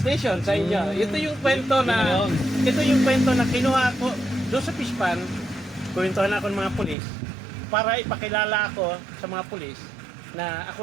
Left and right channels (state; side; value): drops out; left; at 7.0 s